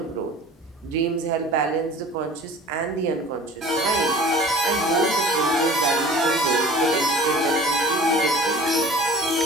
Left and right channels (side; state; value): both; normal; correlation 0.44